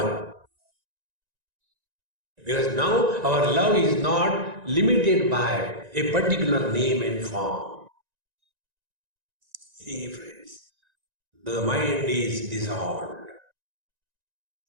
Because now our love is not limited by a particular name and form. See, friends, the mind is dissolved.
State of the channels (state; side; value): late; left; 1.9 ms